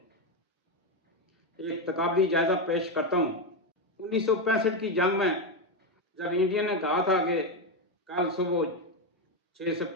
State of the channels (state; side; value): normal; both; correlation 0.09